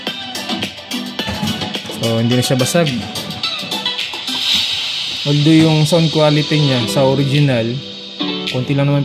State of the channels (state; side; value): identical; both; correlation 1.00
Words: So, hindi na siya basag. Although yung sound quality niya sa original, konti lang naman